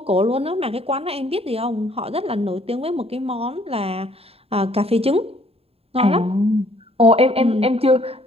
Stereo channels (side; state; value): left; late; 0.29 ms